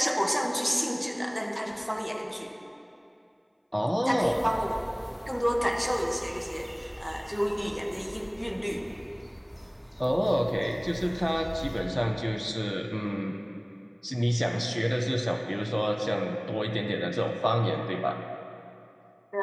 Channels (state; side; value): identical; both; correlation 1.00